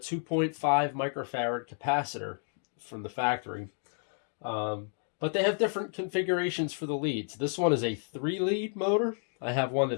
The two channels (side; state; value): right; silent; 57 dB below the other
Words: microfarad capacitor from the factory. Um, but they have different configurations for the leads. This one is a 3-lead motor. I have one